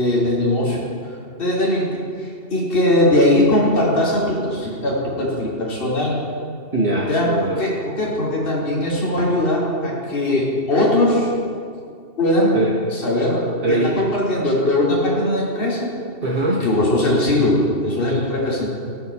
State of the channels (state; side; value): late; right; 2.7 ms